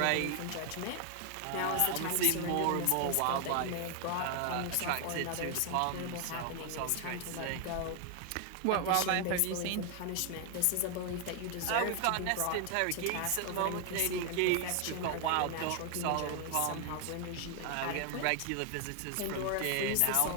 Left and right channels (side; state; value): both; different; correlation 0.00